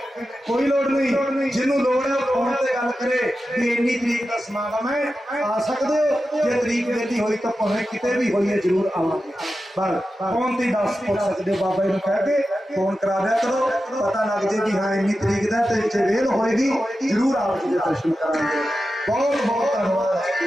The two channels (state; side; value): normal; both; correlation 0.92